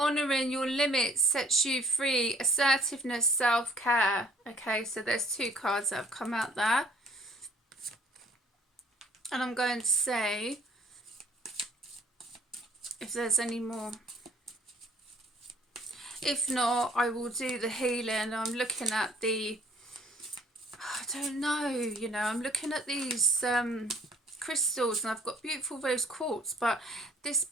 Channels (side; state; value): both; normal; correlation 0.57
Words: your limits sets you free. Assertiveness, self-care. Okay, so there's two cards that have come out there. And I'm going to say if there's any more. If not, I will do the healing. I'm looking at the, I don't know, you know, I'm looking at these crystals, and I've got beautiful rose quartz, but this